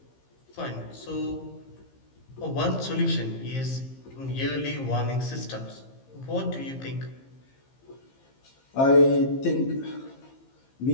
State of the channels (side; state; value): right; late; 15 ms